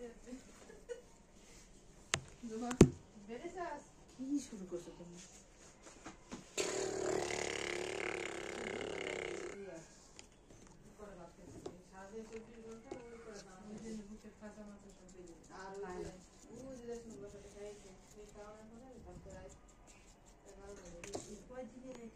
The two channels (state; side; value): identical; both; correlation 1.00